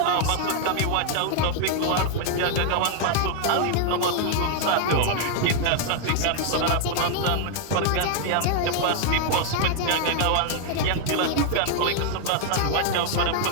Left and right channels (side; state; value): both; different; correlation 0.00